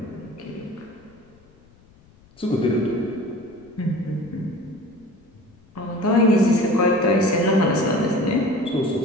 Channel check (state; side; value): noise; left; rumble, 28 dB below the sound